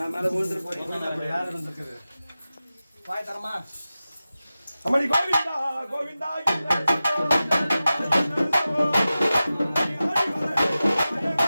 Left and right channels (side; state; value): both; inverted; correlation -0.95